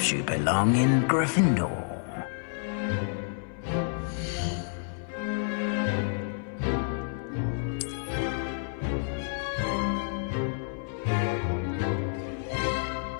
you belong in Gryffindor.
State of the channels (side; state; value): right; silent; 56 dB below the other